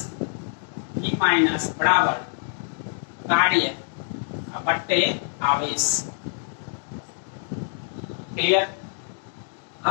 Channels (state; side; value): silent; right; digital silence